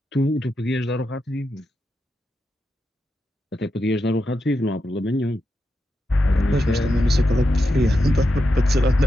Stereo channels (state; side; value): normal; both; correlation 0.87